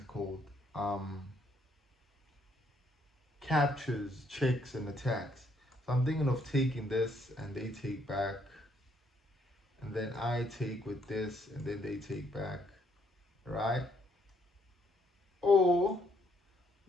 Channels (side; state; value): both; normal; correlation 0.70